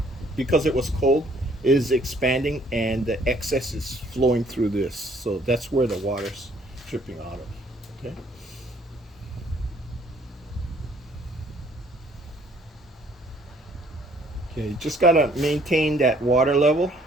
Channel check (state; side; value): normal; both; correlation 0.61